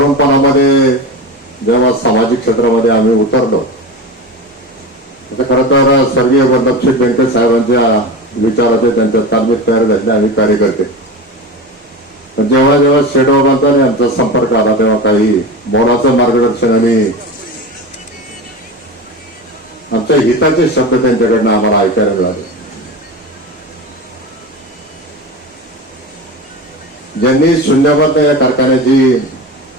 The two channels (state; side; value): normal; both; correlation 0.26